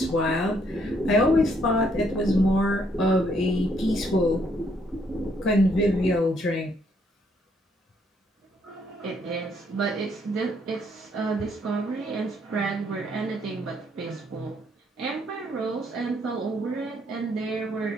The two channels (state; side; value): normal; both; correlation 0.70